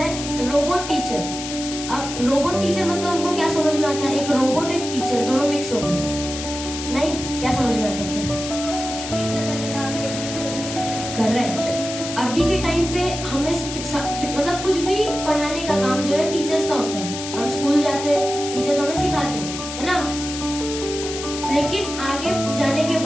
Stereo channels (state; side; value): noise; left; hiss, 8 dB below the sound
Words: रोबोट टीचर. अब रोबोट टीचर मतलब हमको क्या समझ में आता है? एक रोबोट एक टीचर दोनों मिक्स हो गए. नहीं, क्या समझ में आता है? करेक्ट. अभी के टाइम पे हमें मतलब कुछ भी पढ़ाने का काम जो है टीचर्स का होता है. हम स्कूल जाते हैं, टीचर्स हमें सिखाते हैं, है ना. लेकिन आगे जाने के